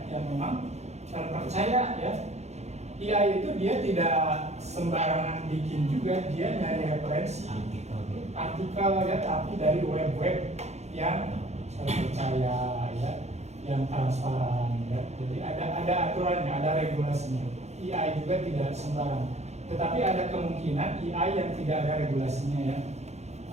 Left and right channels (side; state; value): left; late; 0.32 ms